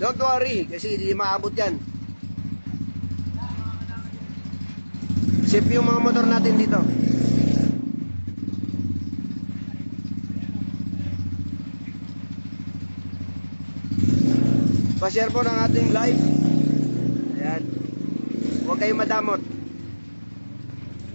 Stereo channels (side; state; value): both; inverted; correlation -1.00